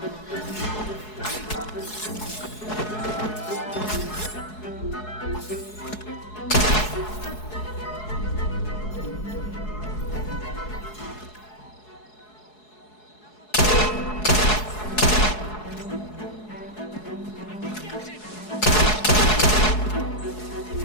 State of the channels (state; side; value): late; right; 4.7 ms